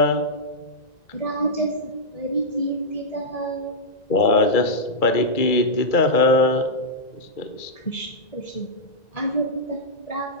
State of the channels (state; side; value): late; right; 1.9 ms